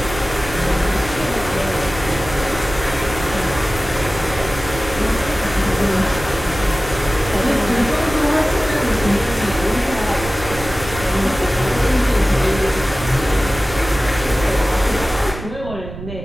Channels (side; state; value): right; noise; rumble, 11 dB below the sound